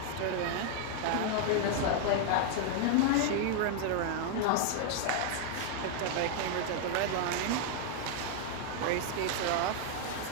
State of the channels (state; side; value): different; both; correlation 0.00